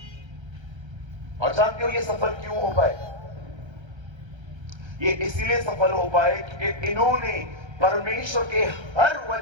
और जानते हो ये सफल क्यों हो पाए? ये इसीलिए सफल हो पाए क्योंकि इन्होंने परमेश्वर के हर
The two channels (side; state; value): left; late; 1.3 ms